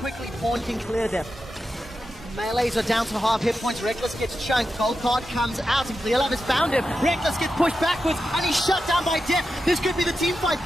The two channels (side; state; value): both; normal; correlation 0.90